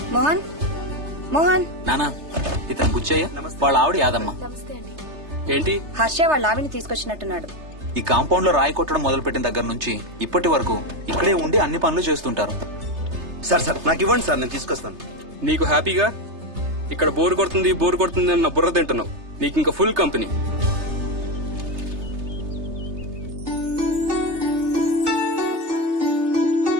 మోహన్, మోహన్. నానా, ఇతను బుచ్చయ్య, వాళ్ళ ఆవిడ యాదమ్మ. ఏంటి? హర్ష వాళ్ళ ఆవిని తీసుకొచ్చినట్టున్నాడు. ఈ కాంపౌండ్ లో రాయి కొట్టడం మొదలుపెట్టిన దగ్గర నుంచి ఇప్పటి వరకు ఇక్కడే ఉండి అన్ని పనులు చేస్తుంటారు. సార్ నాకు ఇవ్వండి సార్, నేను తీసుకొస్తాను. నీకు హ్యాపీగా ఇక్కడ బోర్ కొడుతుంది అన్న బుర్ర తింటున్నావు. నీకు ఇంకా ఫుల్ కంపెనీ.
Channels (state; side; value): late; left; 3.3 ms